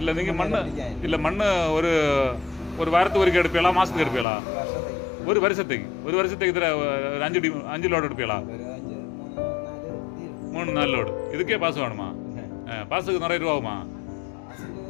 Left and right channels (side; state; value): right; drops out; at 4.2 s